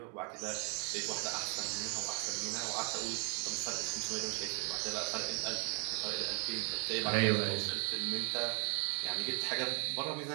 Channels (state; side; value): quieter; left; 38.9 dB